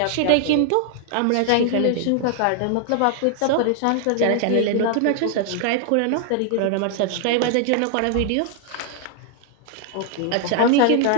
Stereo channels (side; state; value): both; different; correlation 0.00